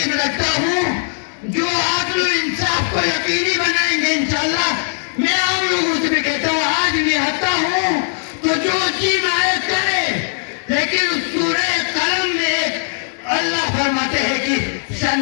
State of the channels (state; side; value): silent; right; digital silence